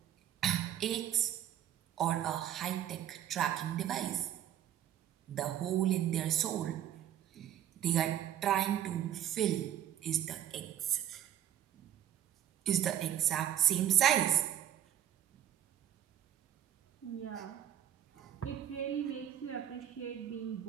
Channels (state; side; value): quieter; left; 10.9 dB